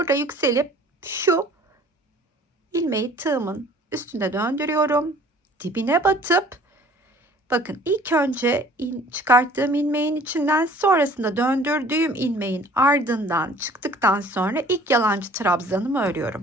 yükselip şu ilmeği tığımın üstünde döndürüyorum. Dibine batıp bakın ilk önce çıkarttığım ilmeğin içinden sonrasında döndürdüğüm ilmeğin ardından çıktıktan sonra ilk yalancı trabzanımı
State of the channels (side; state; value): both; normal; correlation 0.51